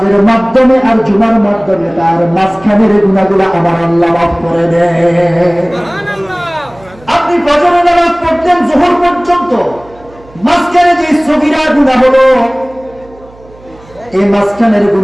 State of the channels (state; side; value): noise; right; hum, 24 dB below the sound